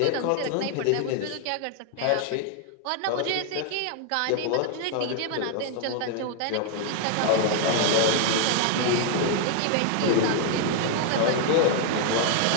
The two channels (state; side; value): different; both; correlation 0.00